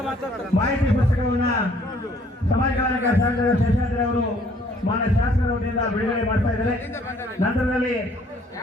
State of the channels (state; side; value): normal; both; correlation 0.61